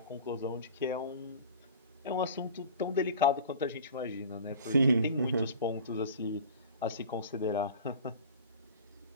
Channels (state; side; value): inverted; both; correlation -0.39